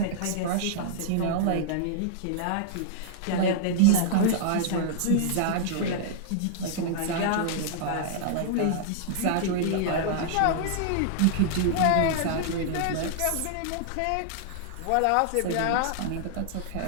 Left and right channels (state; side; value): different; both; correlation -0.01